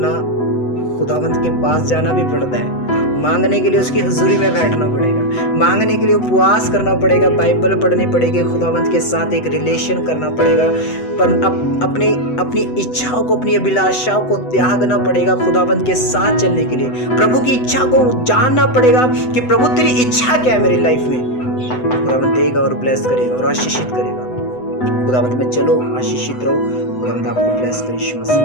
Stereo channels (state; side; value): late; right; 8.0 ms